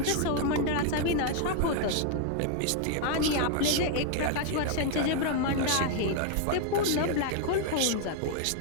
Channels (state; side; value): different; both; correlation 0.00